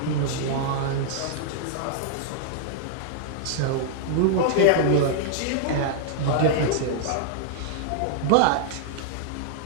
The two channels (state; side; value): different; both; correlation -0.01